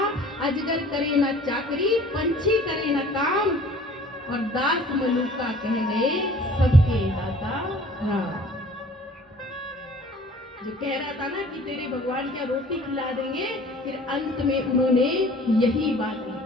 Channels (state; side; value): normal; both; correlation 0.50